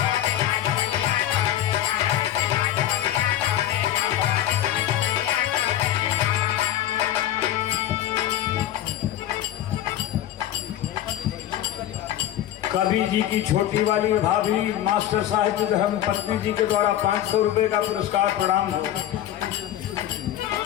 कवि जी की छोटी वाली भाभी मास्टर साहिब धर्म पत्नी जी के द्वारा 500 रुपए का पुरस्कार, प्रणाम हो।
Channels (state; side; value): quieter; right; 12.1 dB